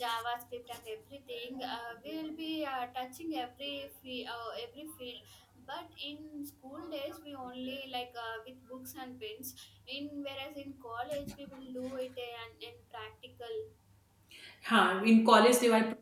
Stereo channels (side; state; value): both; identical; correlation 1.00